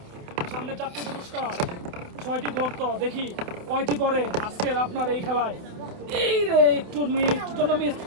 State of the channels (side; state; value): left; late; 28 ms